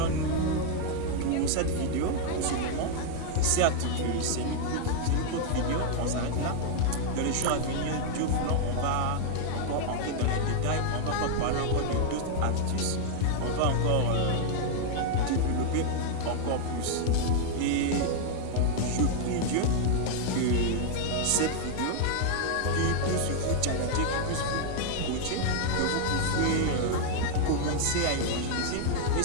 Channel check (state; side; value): different; both; correlation 0.00